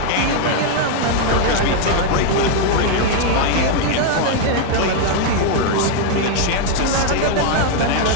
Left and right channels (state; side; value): different; both; correlation 0.00